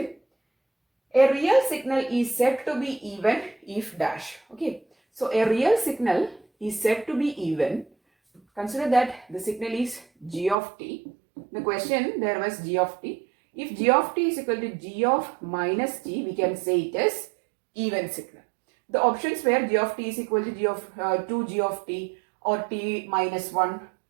A real signal is said to be even if dash. Okay. So a real signal is said to be even. Consider that the signal is G of t. The question there was G of t. If G of t is equal to G of minus t, we can say it is even signal. The options were G of t is equal to G of 2G of t or t minus 1.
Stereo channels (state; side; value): drops out; left; at 10.6 s